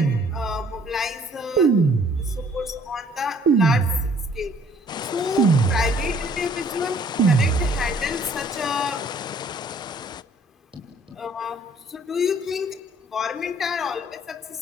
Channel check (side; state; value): both; normal; correlation 0.58